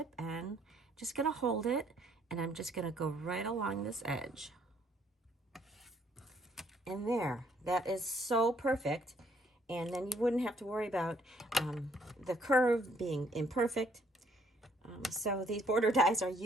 and just going to hold it, and I'm just going to go right along this edge. And there, that is so perfect. And then you wouldn't have to worry about the curve being imperfect. So these border dies are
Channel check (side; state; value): both; normal; correlation 0.66